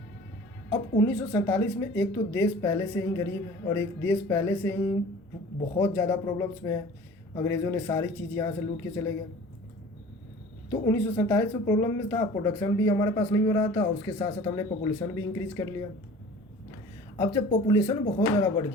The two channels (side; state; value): both; normal; correlation 0.44